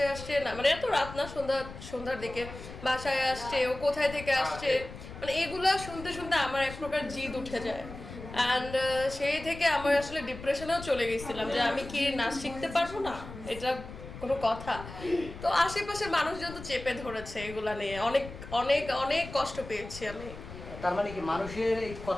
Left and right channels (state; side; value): noise; left; rumble, 13 dB below the sound